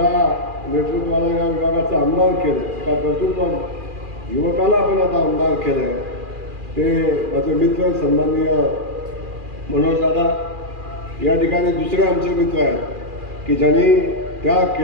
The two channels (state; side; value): late; left; 2.4 ms